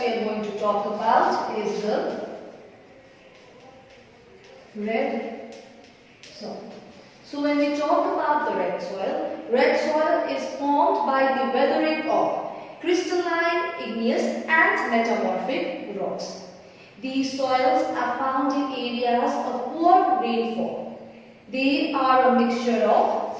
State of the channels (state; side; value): identical; both; correlation 1.00